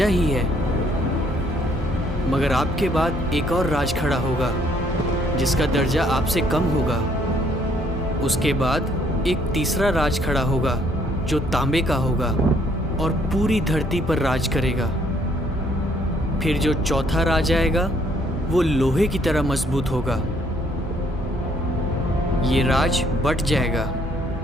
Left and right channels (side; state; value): both; normal; correlation 0.66